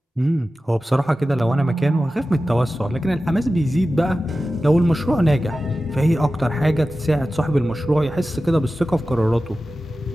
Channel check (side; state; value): both; normal; correlation 0.94